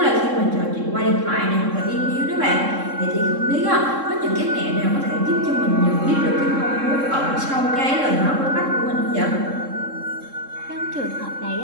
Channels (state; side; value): late; left; 3.6 ms